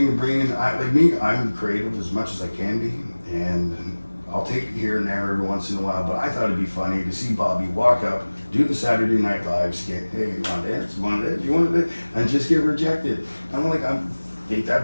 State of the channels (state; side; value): inverted; both; correlation -1.00